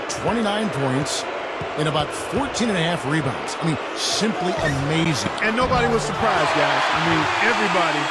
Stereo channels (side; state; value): both; identical; correlation 1.00